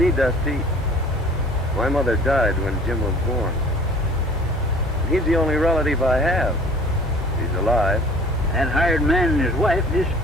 Dusty, my mother died when Jim was born. He's the only relative I have. He's alive. That hired man and his wife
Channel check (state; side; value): normal; both; correlation 0.49